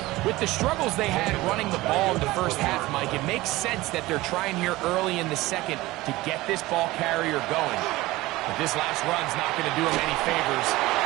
With the struggles they had running the ball in the first half, Mike, it makes sense that they're trying here early in the second to get this ball carrier going. But this last run's not going to do him any favors.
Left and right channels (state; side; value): quieter; left; 19.0 dB